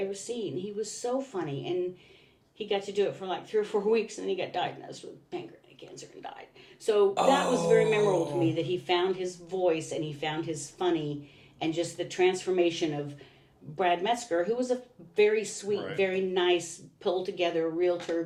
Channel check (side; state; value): both; identical; correlation 1.00